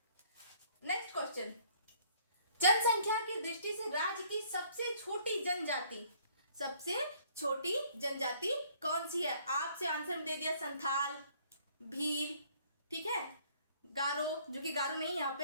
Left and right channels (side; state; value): both; inverted; correlation -0.60